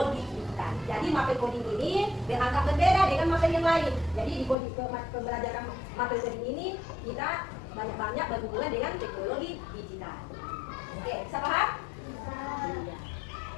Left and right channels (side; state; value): right; drops out; at 4.5 s